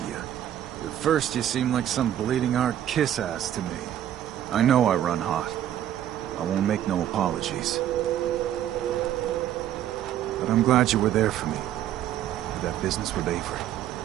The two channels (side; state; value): left; quieter; 11.3 dB